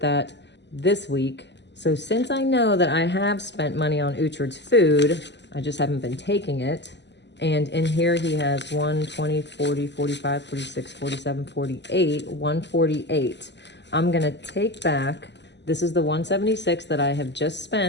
that this week. So since I know that I have spent money on Uhtred's food, I just haven't been taking it. And in here he has 1, 20, 40, 45, 46, 47, 48, 148. I'm gonna take back, this is the 176 that I have just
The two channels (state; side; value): late; right; 0.51 ms